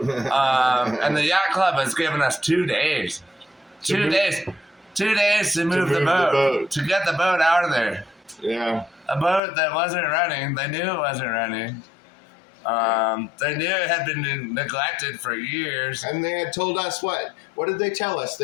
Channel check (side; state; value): right; drops out; at 9.4 s